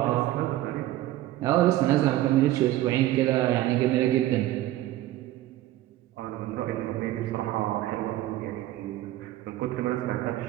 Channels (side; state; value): left; quieter; 14.9 dB